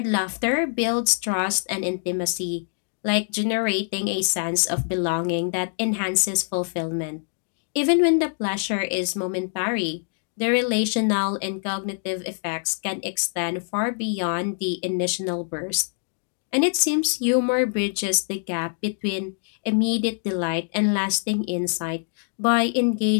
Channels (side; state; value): right; silent; digital silence